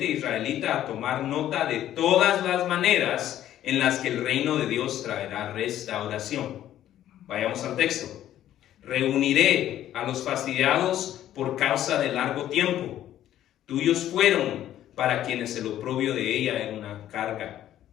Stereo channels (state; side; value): quieter; right; 12.1 dB